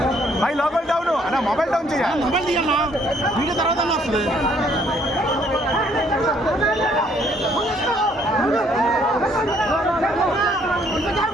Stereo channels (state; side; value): normal; both; correlation 0.65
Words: మై లోకల్ డౌన్ అన్న మొబైల్ డౌన్ చేయ, మొబైల్ తీయన్నా వీడియో తర్వాత వస్తుంది.